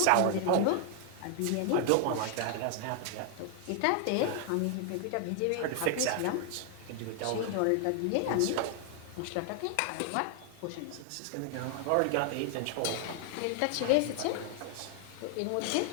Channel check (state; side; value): different; both; correlation 0.00